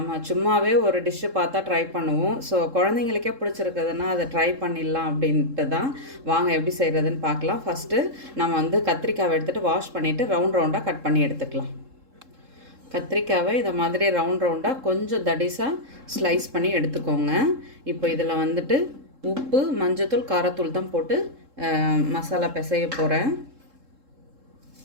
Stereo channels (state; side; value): late; left; 3.7 ms